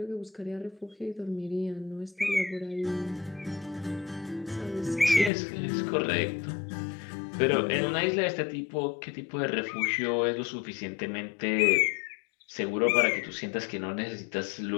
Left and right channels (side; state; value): right; drops out; at 5.3 s